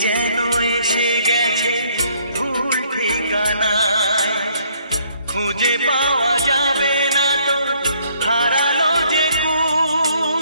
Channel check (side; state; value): both; inverted; correlation -0.65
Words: যেন এসে গেছে ভুল ঠিকানায়, খুঁজে পাওয়া যাবে না তো হারালো যে